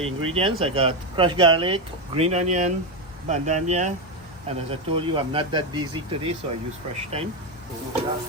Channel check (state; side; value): normal; both; correlation 0.09